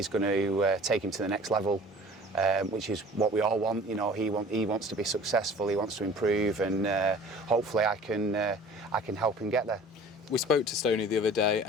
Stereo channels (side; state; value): both; normal; correlation 0.46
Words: take him to the next level. Which is what we all want. He wants to be successful. He wants to improve, and hopefully I can help him get there. We spoke to Stoney the other day,